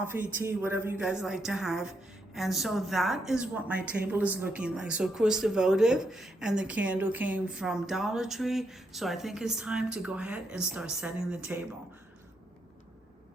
tea, whatever you guys like to have. And so that is what my table is looking like. So of course the votive and the candle came from Dollar Tree. So I think it's time to go ahead and start setting the table.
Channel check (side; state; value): both; normal; correlation 0.79